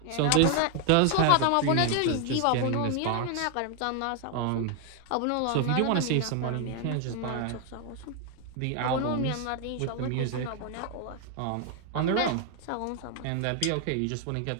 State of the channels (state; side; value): different; both; correlation 0.00